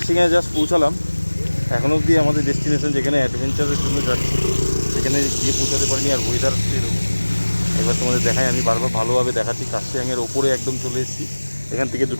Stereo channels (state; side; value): inverted; both; correlation -1.00